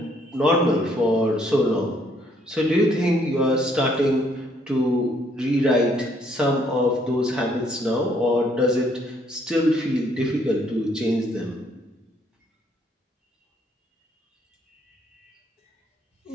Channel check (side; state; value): both; normal; correlation 0.67